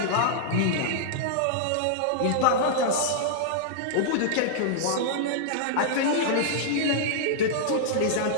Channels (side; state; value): both; different; correlation -0.02